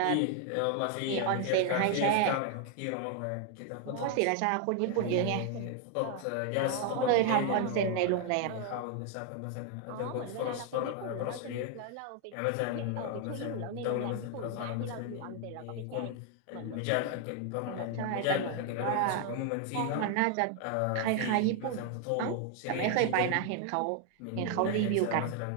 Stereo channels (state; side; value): different; both; correlation 0.00